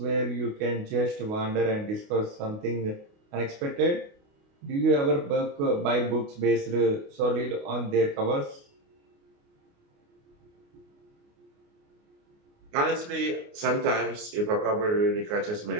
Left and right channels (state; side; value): late; left; 29 ms